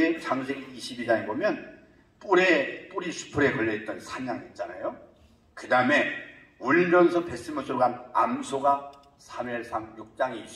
창세기 22장에 보면 뿌리 수풀에 걸려있던 산양 있잖아요. 그 다음에 울면서 뱃속으로 간 암소가 사무엘상 6장에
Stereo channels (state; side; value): identical; both; correlation 1.00